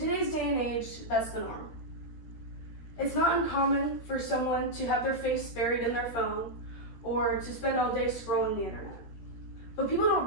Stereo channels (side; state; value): right; late; 13 ms